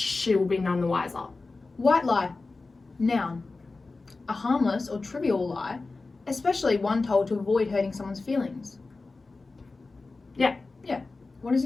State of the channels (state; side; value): quieter; right; 3.7 dB